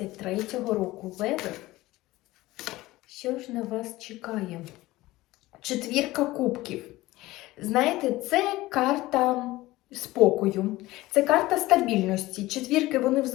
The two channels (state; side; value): quieter; right; 18.3 dB